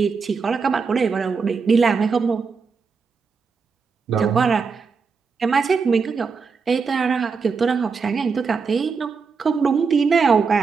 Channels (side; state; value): left; quieter; 5.2 dB